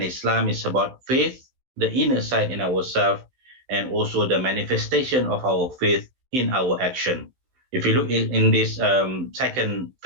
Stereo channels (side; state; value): left; late; 16 ms